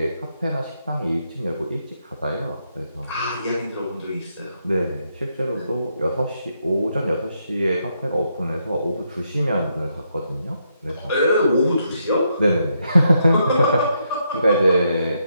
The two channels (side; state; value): both; inverted; correlation -0.78